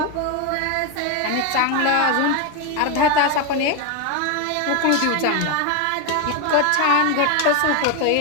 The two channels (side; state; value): both; different; correlation 0.02